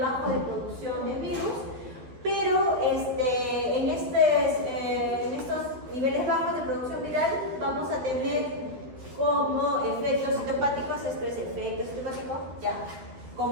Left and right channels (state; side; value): late; left; 12 ms